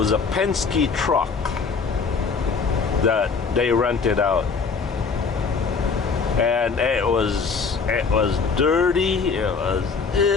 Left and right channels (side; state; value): right; quieter; 5.1 dB